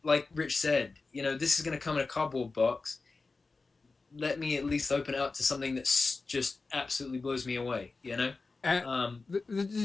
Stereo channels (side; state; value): right; quieter; 3.9 dB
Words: like Rich said, this is going to come in a cardboard box. Let me at least open it up to something that's just absolutely blows me away,